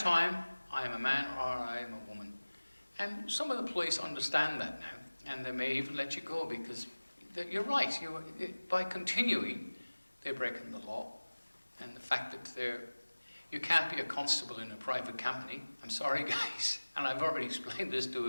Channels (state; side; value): inverted; both; correlation -1.00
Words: I am a man or I am a woman. And some of the police understand that now, and they may even let you go, because you're right, by continuing, they're breaking the law. And the fact that you can't be a constable in a private company. I'm sorry, guys. And I've already explained this to